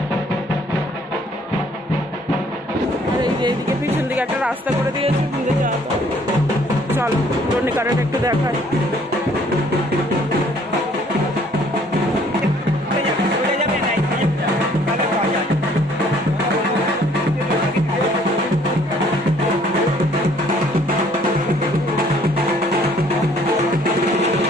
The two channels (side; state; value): both; normal; correlation 0.60